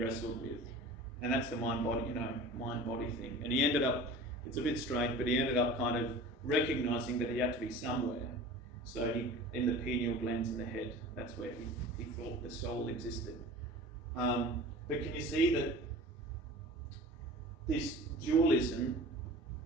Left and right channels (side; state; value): both; normal; correlation 0.39